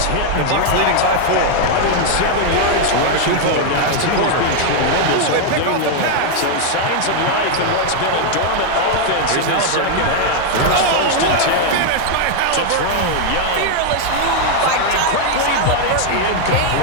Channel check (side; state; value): both; different; correlation 0.00